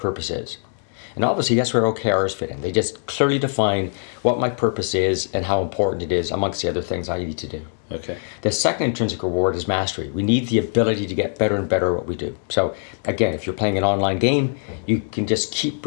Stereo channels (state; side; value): silent; right; digital silence